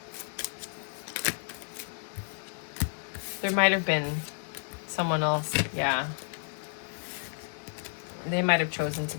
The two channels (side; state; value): right; silent; digital silence